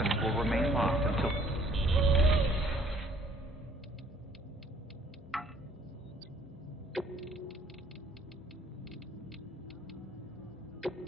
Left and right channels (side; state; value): both; normal; correlation 0.60